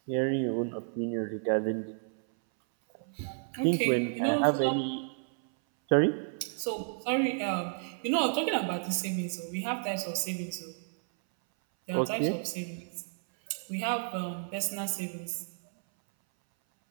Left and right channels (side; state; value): left; silent; 57 dB below the other